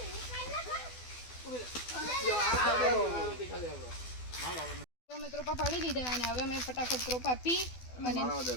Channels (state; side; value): late; right; 12 ms